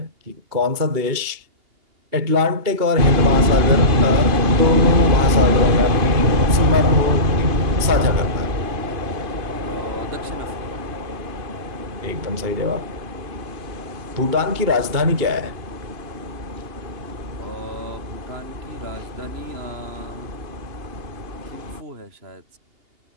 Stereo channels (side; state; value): left; late; 2.8 ms